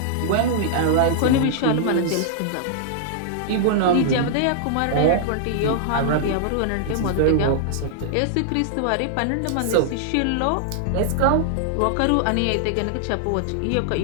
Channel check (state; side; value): different; both; correlation -0.01